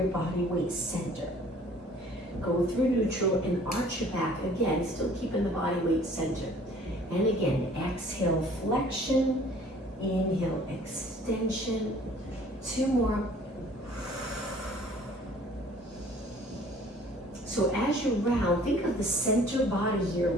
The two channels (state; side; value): normal; both; correlation 0.54